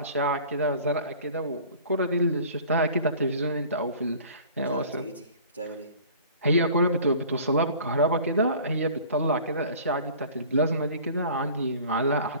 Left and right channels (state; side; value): inverted; both; correlation -0.46